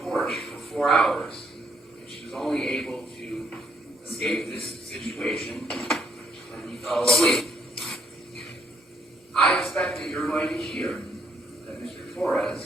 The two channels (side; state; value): both; normal; correlation 0.71